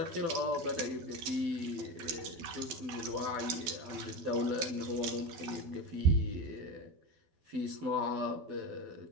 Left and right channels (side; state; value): left; late; 12 ms